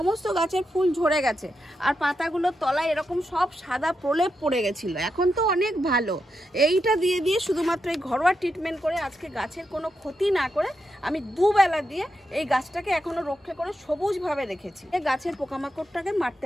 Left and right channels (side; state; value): both; normal; correlation 0.85